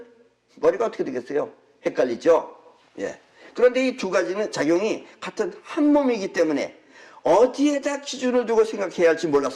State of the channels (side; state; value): both; identical; correlation 1.00